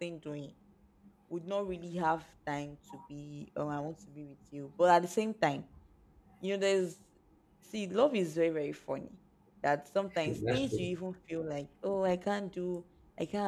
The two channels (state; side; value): identical; both; correlation 1.00